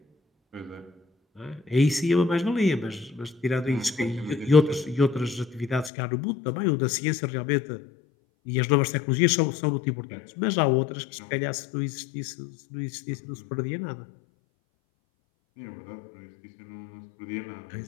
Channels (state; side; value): drops out; right; at 5.9 s